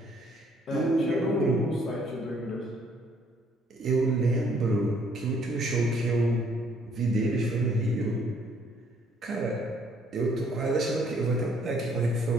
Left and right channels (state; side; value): normal; both; correlation 0.64